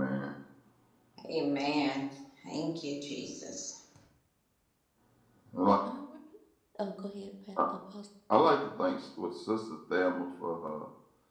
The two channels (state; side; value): identical; both; correlation 1.00